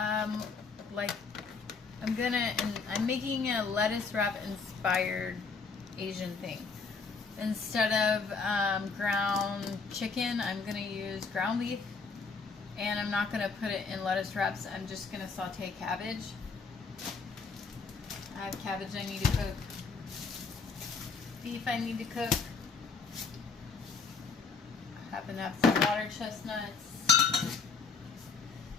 making a lettuce wrap inspired Asian thing. Instead of ground chicken, I'm gonna use ground beef, and I'm not gonna put it in lettuce wraps. I'm just gonna saute cabbage. I have cabbage I need to cook, beef I need to cook. Happen to have some water chestnuts.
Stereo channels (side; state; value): right; quieter; 4.9 dB